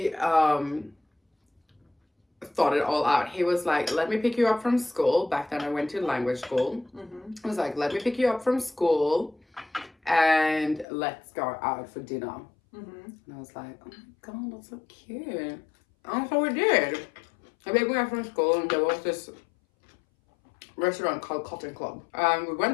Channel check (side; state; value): right; drops out; at 10.9 s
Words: thought it all out. He was like, let me pick you up from school. Back then I went to language school. He was like, let me pick you up from school and let's go out for dinner. And I was like, oh my God, that's so cute. And so we did. I picked me up from school and there was this restaurant called Cotton Club. We